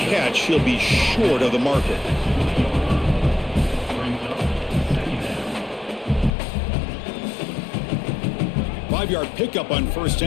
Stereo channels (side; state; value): right; drops out; at 6.4 s